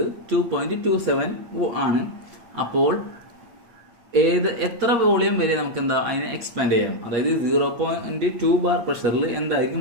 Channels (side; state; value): left; late; 8.4 ms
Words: 2.27 ആണ്. അപ്പോൾ എത്ര വോളിയം വരെ നമുക്ക് എന്താ അതിനെ എക്സ്പാൻഡ് ചെയ്യാം. അതായത് 0.2 ബാർ പ്രഷറിൽ എന്തായിരിക്കും